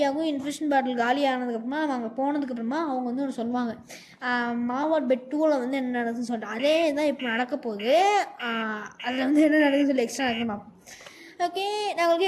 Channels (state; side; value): identical; both; correlation 1.00